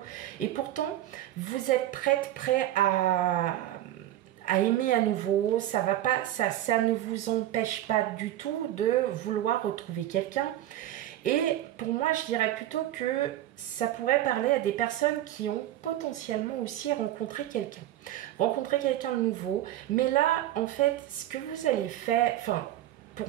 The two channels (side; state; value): left; quieter; 13.3 dB